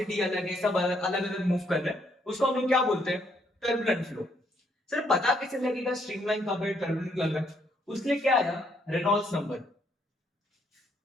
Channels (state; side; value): normal; both; correlation 0.71